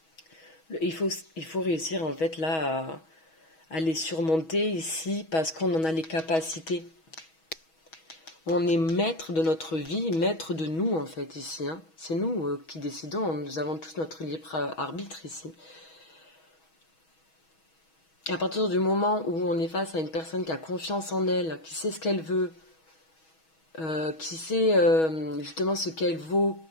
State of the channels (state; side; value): late; right; 6.2 ms